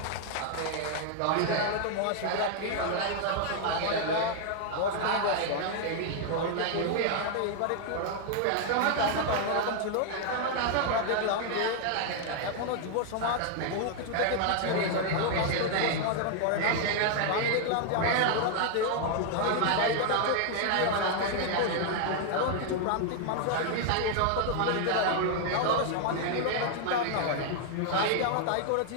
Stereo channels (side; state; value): both; different; correlation 0.00